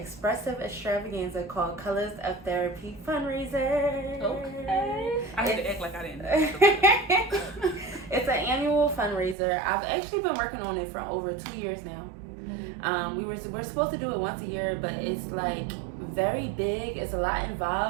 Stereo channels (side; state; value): left; drops out; at 9.3 s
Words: extravaganza called Colors of Therapy fundraiser. Okay. I had to act like I didn't know. It's an annual fundraiser. I've actually been working on it for over 2 years now. We're supposed to do it once a year, but it's like very big. It's a lot